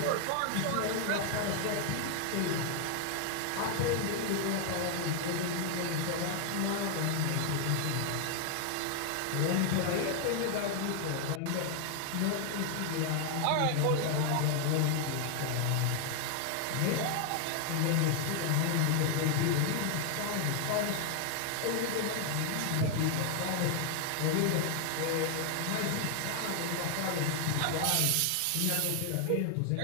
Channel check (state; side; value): different; both; correlation 0.00